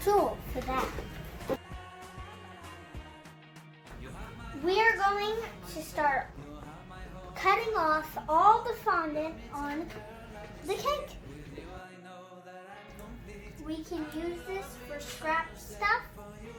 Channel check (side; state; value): both; identical; correlation 1.00